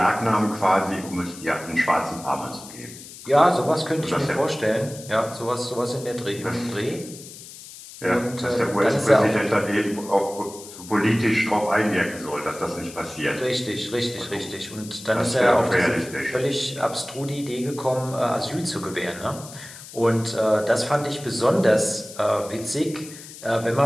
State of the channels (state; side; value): noise; left; hiss, 16 dB below the sound